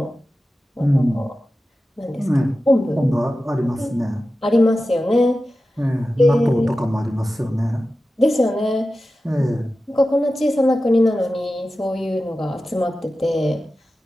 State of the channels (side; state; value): both; normal; correlation 0.94